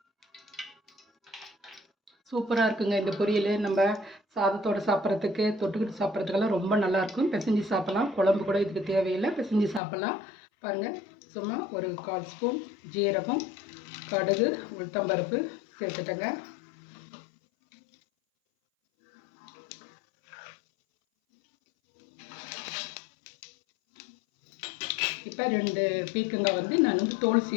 சூப்பராக இருக்குங்க இந்த பொரியல். நம்ம சாதத்தோடு சாப்பிட்றதுக்கு, தொட்டுக்கிட்டு சாப்பிட்றதுக்கெல்லாம் ரொம்ப நல்லாயிருக்கும். பிசைஞ்சு சாப்பிட்லாம். குழம்பு கூட இதுக்கு தேவையில்லை, பிசைஞ்சு சாப்பிட்லாம். பாருங்கள், சும்மா ஒரு 1/4 ஸ்பூன் ஜீரகம், கடுகு, உளுத்தம்பருப்பு சேர்த்துட்டேங்க. இப்போ 2 பீக்கங்காய் நான் தோல்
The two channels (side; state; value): right; drops out; at 9.8 s